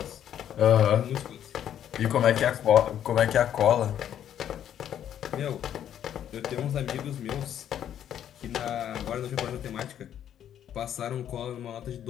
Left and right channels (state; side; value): quieter; right; 10.2 dB